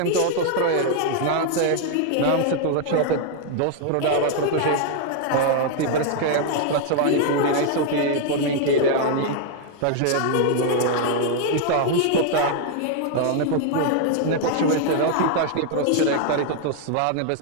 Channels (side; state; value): both; different; correlation 0.00